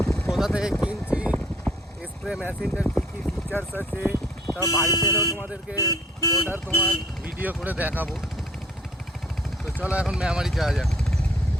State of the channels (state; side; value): normal; both; correlation 0.58